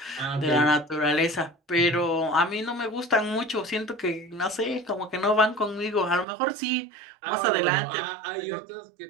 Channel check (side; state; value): left; drops out; at 6.2 s